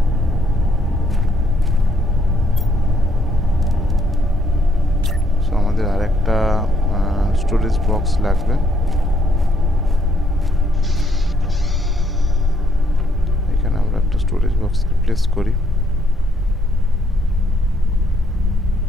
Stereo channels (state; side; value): normal; both; correlation 0.72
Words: সো আমাদের আর একটা স্টোরেজ বক্স লাগবে। এখানে আমরা একটা স্টোরেজ বক্স প্লেস করি।